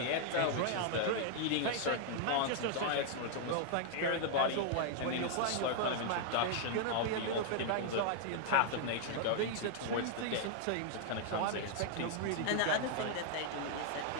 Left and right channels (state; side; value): different; both; correlation 0.00